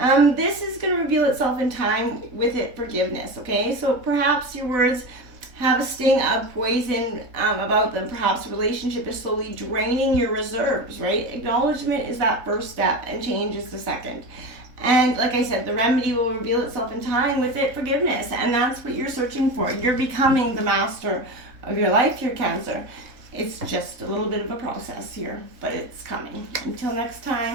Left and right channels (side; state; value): left; late; 3.6 ms